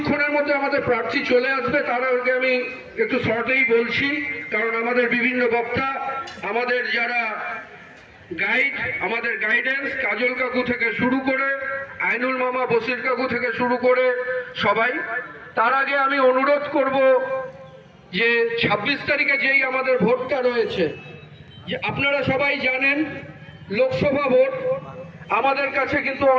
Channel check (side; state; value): both; identical; correlation 1.00